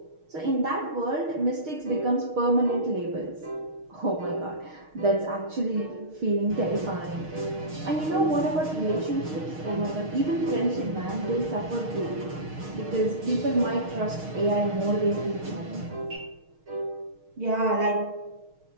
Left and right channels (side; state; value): left; late; 6.4 ms